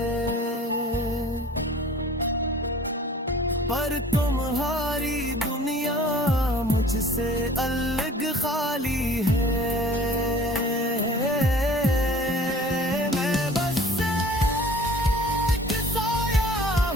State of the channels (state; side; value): normal; both; correlation 0.48